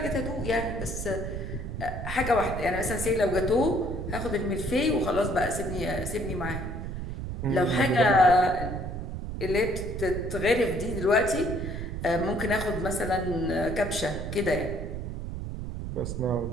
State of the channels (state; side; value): noise; right; rumble, 6 dB below the sound